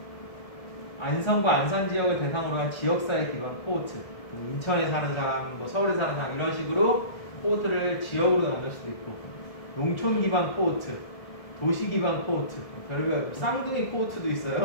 안성과 안산 지역을 대상으로 한 지역사회 기반 코호트, 인천에 사는 사람, 뭐 서울에 사는 사람 이런 식으로 코호트를 지역으로 나눌 수도 있고, 농촌 기반 코호트, 도시 기반 코호트, 별별 쌍둥이 코호트도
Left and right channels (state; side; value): late; right; 1.7 ms